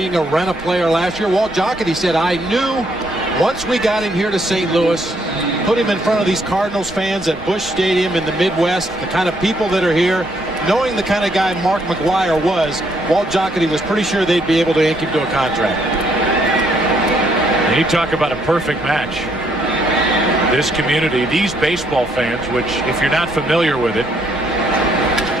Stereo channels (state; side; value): normal; both; correlation 0.71